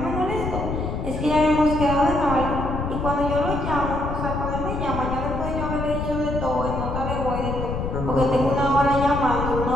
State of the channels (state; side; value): noise; left; rumble, 4 dB below the sound